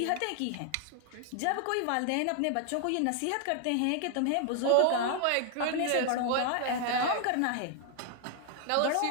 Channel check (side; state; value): both; different; correlation 0.00